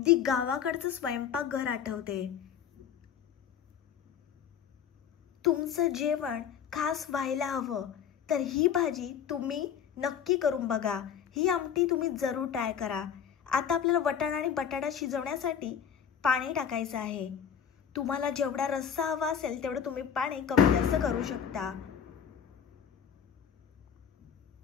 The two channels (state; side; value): quieter; right; 8.2 dB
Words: गावाकडचं स्वयंपाकघर आठवते। तुमचं जेवण खास व्हायला हवं तर ही भाजी तुम्ही नक्की करून बघा। ही आमटी तुम्ही जरूर ट्राय करा। आता आपल्याला वाटाणा आणि बटाटा शिजवण्यासाठी पाणी टाकायचं आहे। तुम्हाला जेवढा रस्सा हवा असेल तेवढं तुम्ही पाणी कमी जास्त करू शकता।